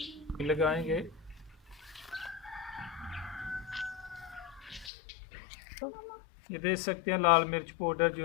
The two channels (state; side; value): drops out; right; at 4.9 s